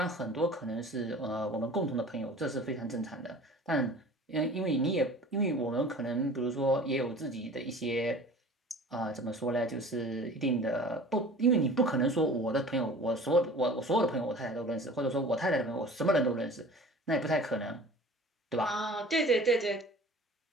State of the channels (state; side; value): normal; both; correlation 0.43